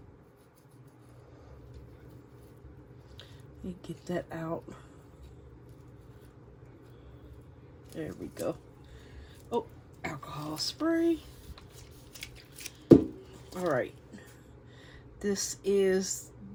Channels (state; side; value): identical; both; correlation 1.00